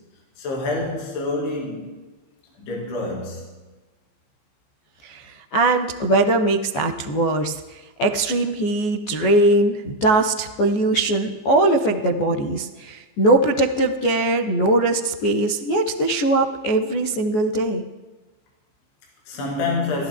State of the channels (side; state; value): right; late; 14 ms